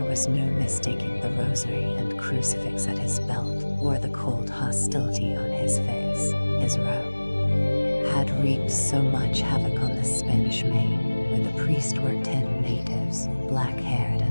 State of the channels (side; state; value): both; inverted; correlation -1.00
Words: was no mistaking the rosary and crucifix at his belt, or the cold hostility on his face. His robe had wreaked so much havoc on the Spanish main, where the priest were 10 natives, black-haired